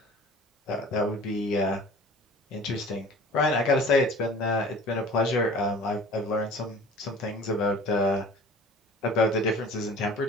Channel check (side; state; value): both; normal; correlation 0.44